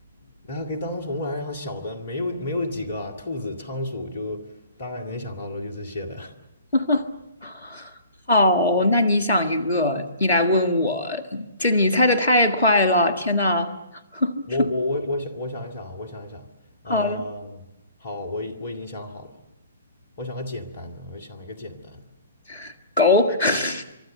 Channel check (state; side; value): inverted; both; correlation -0.49